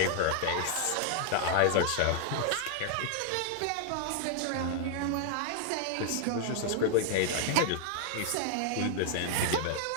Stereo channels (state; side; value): different; both; correlation 0.00